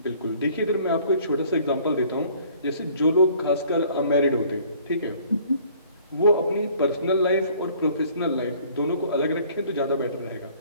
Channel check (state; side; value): inverted; both; correlation -0.56